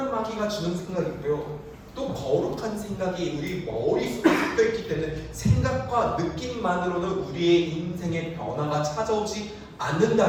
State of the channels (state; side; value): identical; both; correlation 1.00